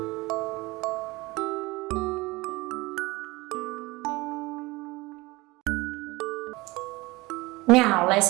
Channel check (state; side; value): quieter; left; 21.7 dB